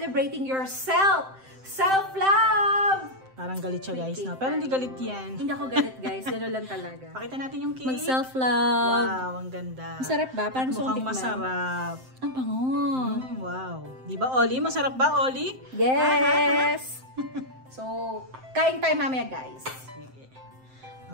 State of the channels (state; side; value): late; left; 7.7 ms